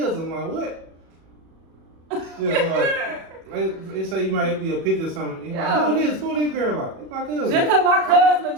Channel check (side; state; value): left; late; 37 ms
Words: Like, what? Yeah, like they say you might be a picture or something. Yeah. Like, who this girl? Like, it's my cousin. Just because my cousin